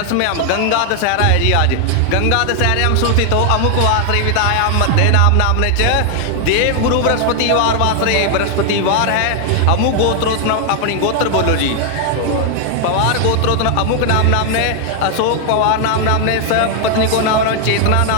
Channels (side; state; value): both; different; correlation 0.00